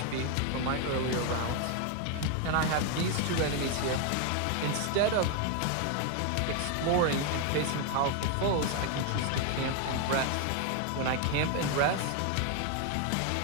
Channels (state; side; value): different; both; correlation 0.01